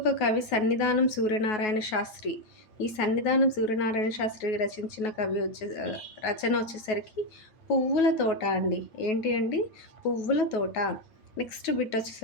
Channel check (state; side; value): late; right; 9.3 ms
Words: కవి సన్నిధానం సూర్యనారాయణ శాస్త్రి. ఈ సన్నిధానం సూర్యనారాయణ శాస్త్రి రచించిన రచన వచ్చేసరికి పువ్వుల తోట అండి. ఏంటి అండి? పువ్వుల తోట. నెక్స్ట్ బిట్